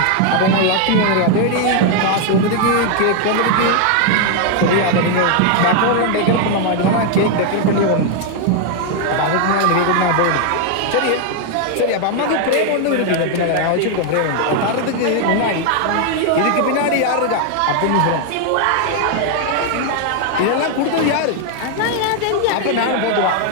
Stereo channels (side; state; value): both; different; correlation 0.00